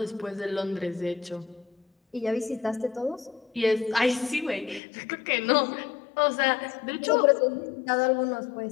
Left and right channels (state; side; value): drops out; right; at 4.8 s